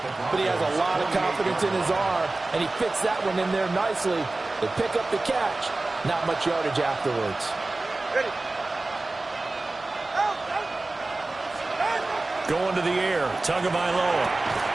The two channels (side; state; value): left; quieter; 3.1 dB